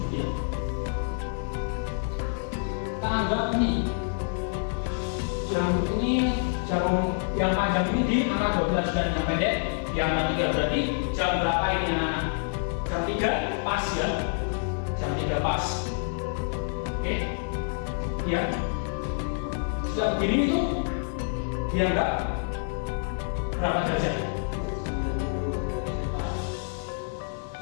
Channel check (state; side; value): silent; right; digital silence